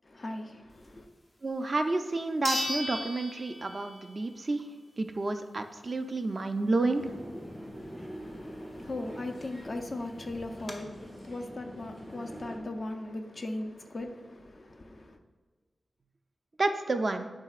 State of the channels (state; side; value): normal; both; correlation 0.93